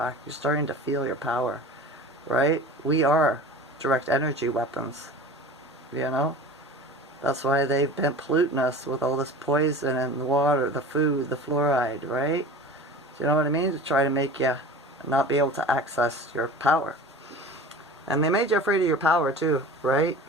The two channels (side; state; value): both; normal; correlation 0.37